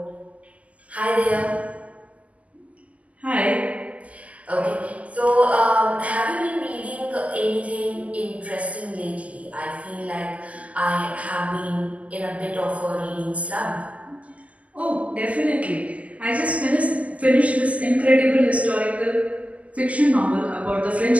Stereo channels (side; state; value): left; late; 0.070 ms